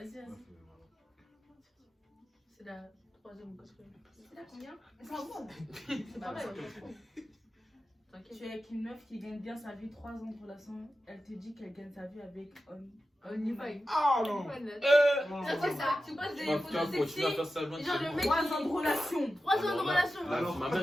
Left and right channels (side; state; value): both; normal; correlation 0.92